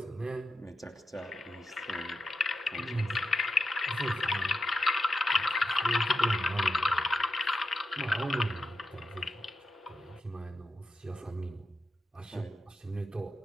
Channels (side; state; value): both; normal; correlation 0.88